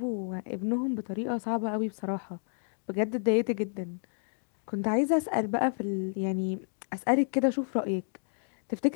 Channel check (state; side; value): silent; right; digital silence